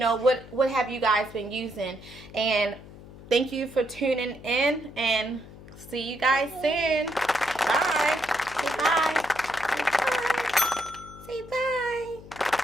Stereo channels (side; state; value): left; noise; hum, 18 dB below the sound